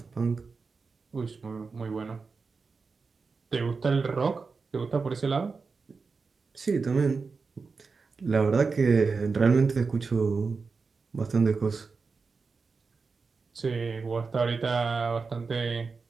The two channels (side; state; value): left; quieter; 4.6 dB